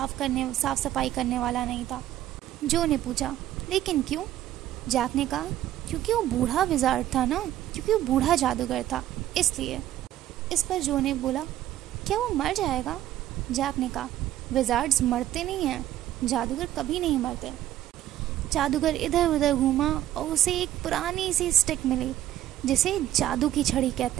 सफाई करने वाला नहीं था। जो ने पूछा, लेकिन क्यों? जैक ने कहा, क्योंकि वो बूढ़ा विज़ार्ड था ना, क्योंकि वो बूढ़ा जादूगर था, इसलिए। इस पर जो ने बोला, क्या वो मर जाएगा? जैक ने कहा, विज़ार्ड्स मरते नहीं हैं, जादूगर कभी नहीं मरते। जादूगर इधर उधर घूमा और उसे एक पुरानी सी स्टिक मिली जिसे जादू की छड़ी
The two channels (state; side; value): quieter; left; 13.0 dB